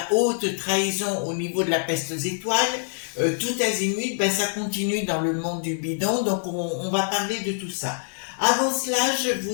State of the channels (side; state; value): right; silent; digital silence